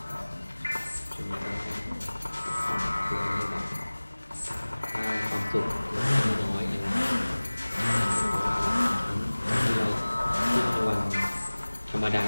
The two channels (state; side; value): inverted; both; correlation -1.00